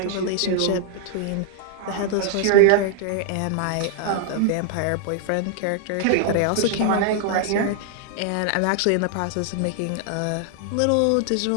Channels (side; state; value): both; different; correlation 0.00